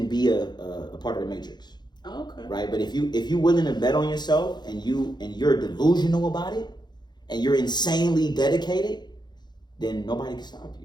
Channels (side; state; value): right; late; 0.21 ms